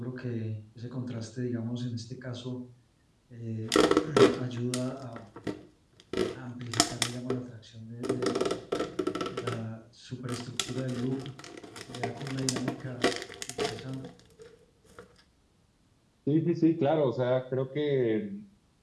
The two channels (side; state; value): both; identical; correlation 1.00